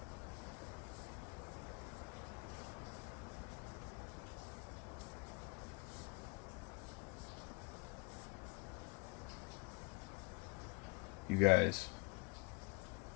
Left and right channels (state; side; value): quieter; right; 30.0 dB